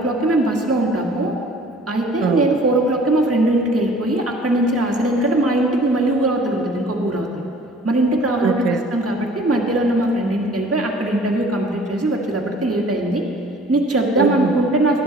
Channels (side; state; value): both; normal; correlation 0.51